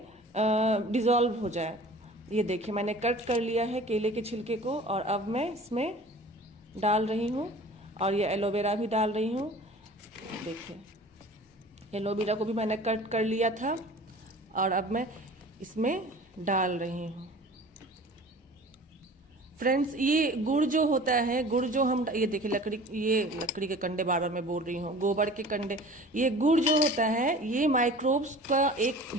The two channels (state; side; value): normal; both; correlation 0.43